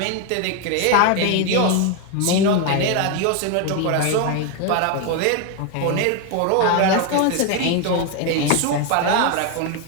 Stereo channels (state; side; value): different; both; correlation 0.01